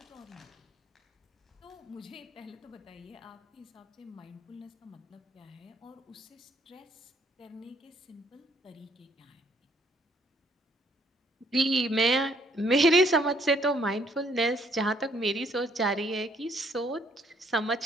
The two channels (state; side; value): normal; both; correlation 0.66